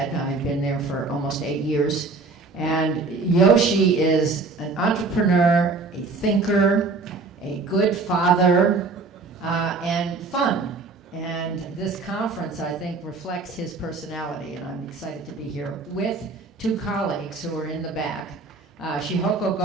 I've been there for almost 8 years. And Yoshi is an entrepreneur, a thinker, a good father, and fun. And this conference, I think, reflects his personality, and I'm excited to be here with two colleagues who are in the back. Shihoko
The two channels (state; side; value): quieter; left; 4.0 dB